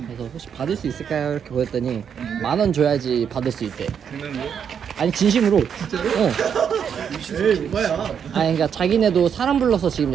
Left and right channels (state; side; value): quieter; left; 7.7 dB